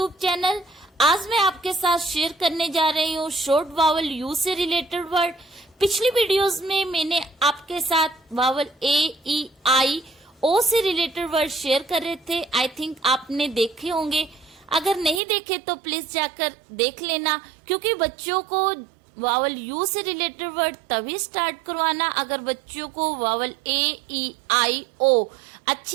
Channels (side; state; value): left; drops out; at 15.2 s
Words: channel. आज मैं आपके साथ शेयर करने जा रही हूँ शॉर्ट वावल यू से रिलेटेड वर्ड। पिछली वीडियोस में मैंने आपके साथ वावल ए, ई, आई, ओ से रिलेटेड वर्ड शेयर कर रहे थे। आई थिंक आपने देखे होंगे। अगर नहीं देखे तो प्लीज जाकर देख लेना, क्योंकि बच्चों को वावल यू से रिलेटेड वर्ड तभी स्टार्ट करवाना अगर बच्चों को वावल ए, ई, आई, ओ